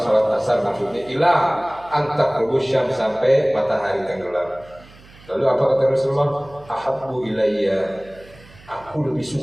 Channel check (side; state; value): right; noise; hum, 24 dB below the sound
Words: sholat asar maksudnya ila antak rubusyam sampai matahari tenggelam. Lalu apa kata Rasulullah? Ahabbu ilayya, aku lebih